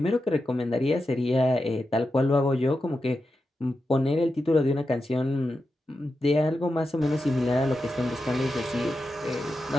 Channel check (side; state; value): both; normal; correlation 0.89